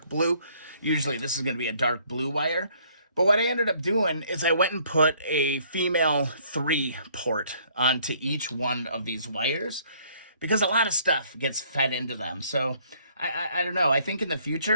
blue. Usually this is going to be a dark blue wire. But what I ended up doing is I went and put a female 3 port onto each one of these wires because a lot of stuff gets fed into them. So I don't know. I think in the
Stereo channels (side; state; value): both; inverted; correlation -0.62